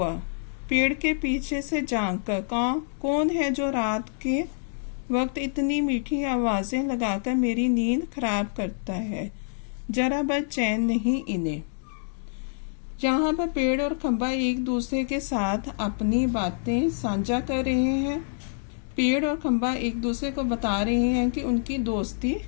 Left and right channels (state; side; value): silent; right; digital silence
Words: पेड़ के पीछे से झांक कर, कौन है जो रात के वक्त इतनी मीठी आवाजें लगाकर मेरी नींद खराब करता है। जरा बस चैन नहीं इन्हें। यहाँ पर पेड़ और खंबा एक दूसरे के साथ अपनी बातें साझा कर रहे हैं। पेड़ और खंबा एक दूसरे को बता रहे हैं कि उनकी दोस्ती